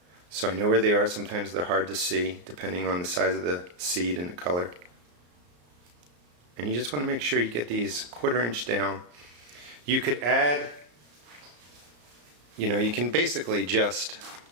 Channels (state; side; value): late; left; 34 ms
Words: so I know where they are. Sometimes they're hard to see, depending on the size of the seed and the color. And you just want to make sure you get these 1/4 inch down. You could add, you can basically just